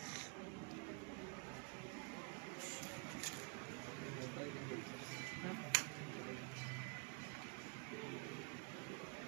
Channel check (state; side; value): quieter; left; 35.4 dB